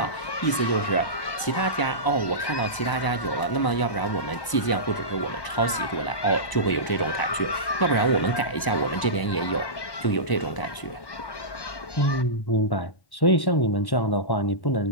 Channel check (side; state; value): right; late; 1.0 ms